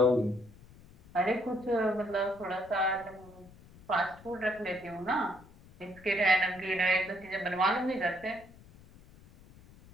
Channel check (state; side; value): noise; left; rumble, 23 dB below the sound